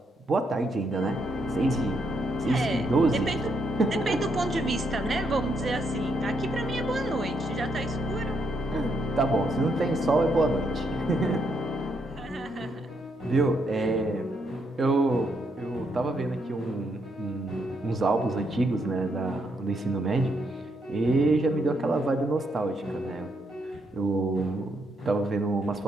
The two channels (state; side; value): normal; both; correlation 0.77